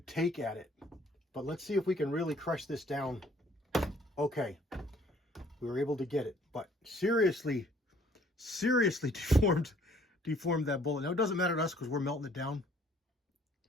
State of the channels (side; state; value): both; normal; correlation 0.59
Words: take at it. But let's see if we can really crush this down. Okay, we were able to get it, but seriously deformed that bullet. Now it doesn't matter to us because we're melting it down.